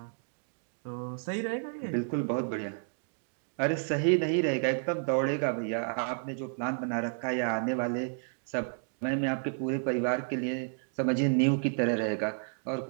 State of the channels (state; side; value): silent; left; digital silence